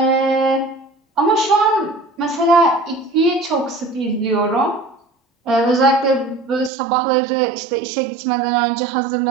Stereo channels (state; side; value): drops out; left; at 6.7 s